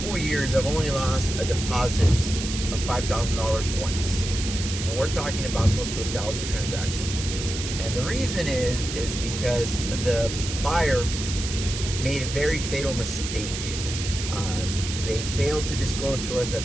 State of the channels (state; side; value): noise; right; hiss, 6 dB below the sound